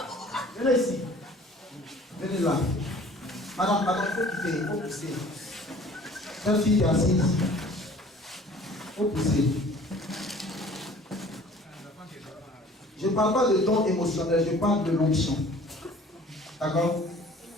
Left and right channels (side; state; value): both; normal; correlation 0.50